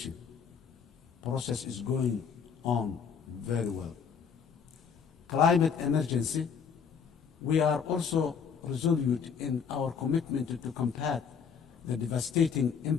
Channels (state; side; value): quieter; right; 6.6 dB